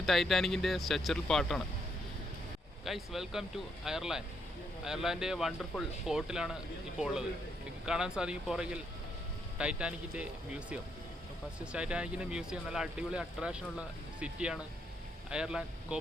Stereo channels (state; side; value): normal; both; correlation 0.76